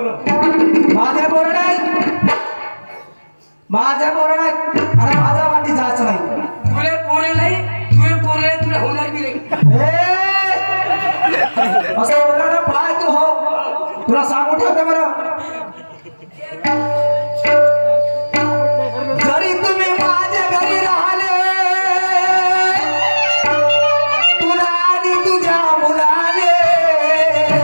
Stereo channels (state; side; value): inverted; both; correlation -1.00